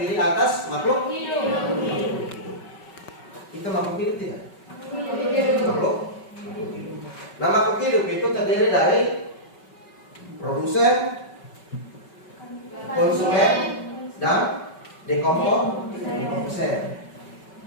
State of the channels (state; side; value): late; right; 5.3 ms